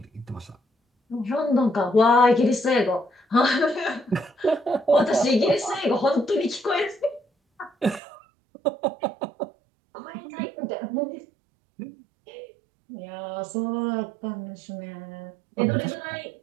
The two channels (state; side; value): drops out; left; at 8.0 s